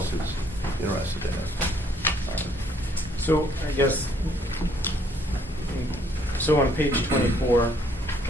who's interested in it. So I guess, so on page 24,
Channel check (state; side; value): normal; both; correlation 0.65